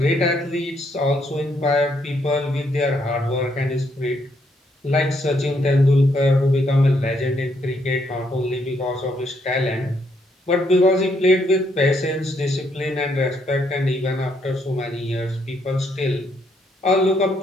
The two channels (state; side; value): normal; both; correlation 0.73